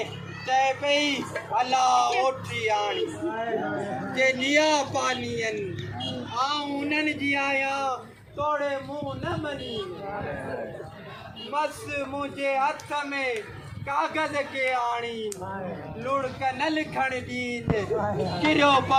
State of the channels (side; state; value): both; identical; correlation 1.00